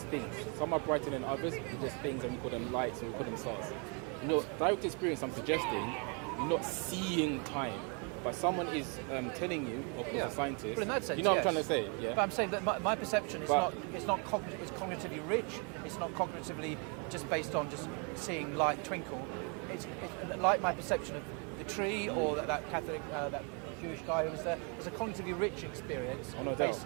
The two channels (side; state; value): left; quieter; 35.7 dB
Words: things. Some are brighter than others, they're just things, and we call them lights, and we call them stars. In your direct experience, I'm suggesting you're not seeing time, but someone is telling you, of course, a scientist. Well, in that sense, you know yes. what I'm trying to say, yeah. But I'm saying that my perception is it's cognitively rich. It's not cognitively just based on just seeing light twinkle. It's like my perception of the tree or that Catholic, that Jewish guy who was there. It's a cognitively rich experience,